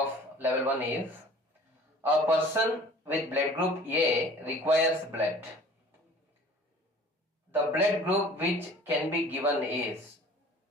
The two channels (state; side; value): normal; both; correlation 0.48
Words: level 1 is, a person with blood group A requires blood. The blood group which can be given is